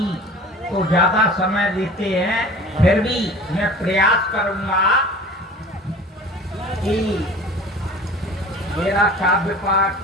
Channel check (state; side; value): normal; both; correlation 0.42